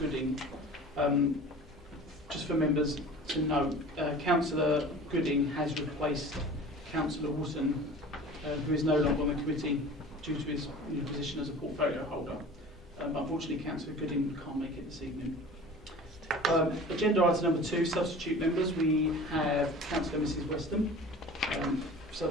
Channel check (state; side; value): normal; both; correlation 0.41